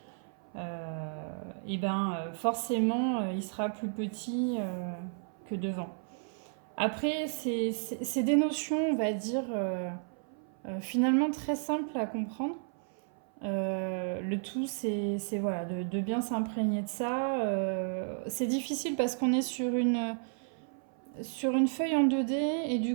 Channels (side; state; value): left; silent; 56 dB below the other